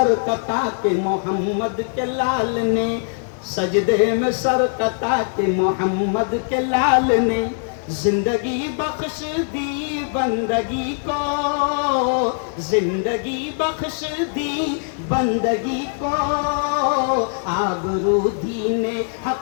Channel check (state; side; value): silent; right; 62 dB below the other